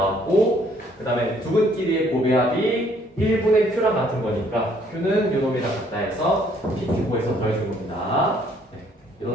그 다음에 두 근끼리의 곱의 합이 1분의 q랑 같은 거니까 q는 요 놈이랑 같다 해서 pq에서 더해준 겁니다. 네,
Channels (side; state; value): both; normal; correlation 0.64